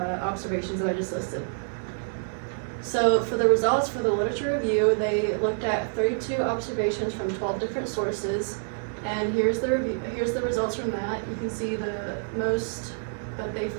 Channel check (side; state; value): left; silent; digital silence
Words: observations that I just listed. So for the results for the literature review, they looked at 32 observations from 12 different sources, and here's the results from that. You can see the most that they